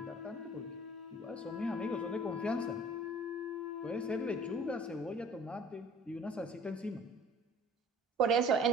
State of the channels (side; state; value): both; normal; correlation 0.48